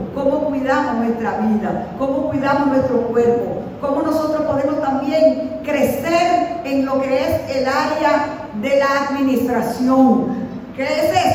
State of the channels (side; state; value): both; identical; correlation 1.00